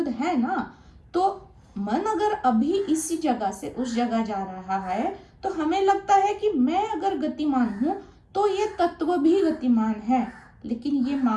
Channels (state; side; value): identical; both; correlation 1.00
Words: है ना। तो मन अगर अभी इसी जगह से उस जगह जा रहा है तो हमें लगता है कि मैं अगर गतिमान हूं तो ये तत्व भी गतिमान है, लेकिन ये